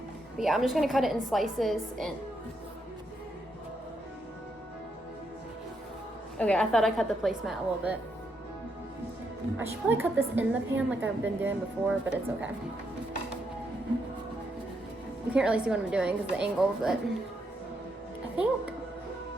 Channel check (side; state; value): both; normal; correlation 0.79